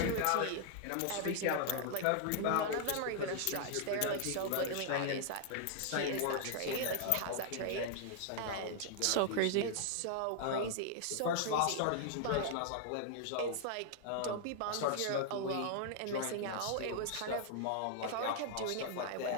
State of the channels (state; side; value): different; both; correlation 0.00